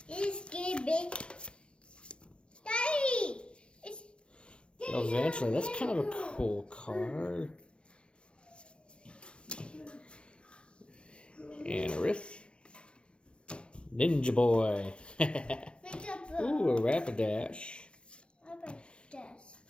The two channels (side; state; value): right; late; 0.056 ms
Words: It's get big. Daddy! It's Eventually, that's kind of a cool card. Anorith. Ninja Boy. Ooh, a Rapidash.